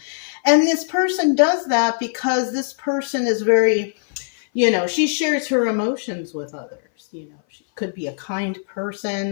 And this person does that because this person is very, you know, she shares her emotions with others. You know, she could be a kind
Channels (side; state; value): right; silent; 59 dB below the other